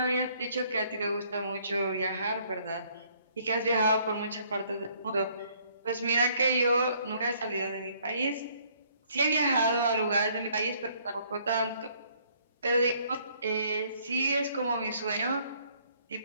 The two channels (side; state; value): both; inverted; correlation -0.64